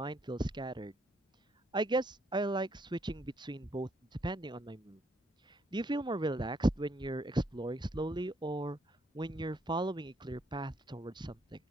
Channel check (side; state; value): both; normal; correlation 0.71